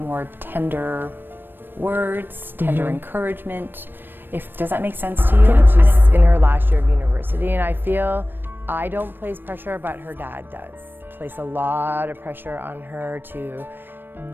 tender words, tender encouragement. Does that make sense to you? Yeah, she's in her last year of university, and I feel I don't place pressure, but her dad does. Place a lot of pressure on her to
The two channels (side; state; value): left; late; 0.095 ms